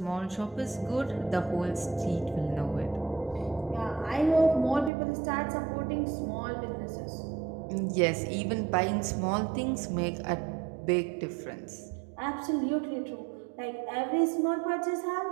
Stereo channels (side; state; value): left; drops out; at 4.9 s